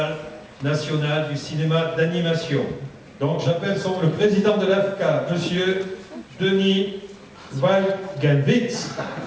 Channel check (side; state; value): both; identical; correlation 1.00